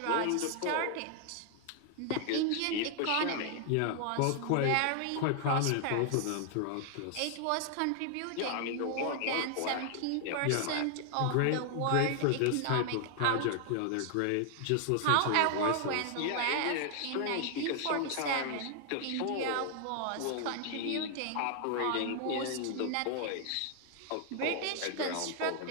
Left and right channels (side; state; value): both; different; correlation 0.00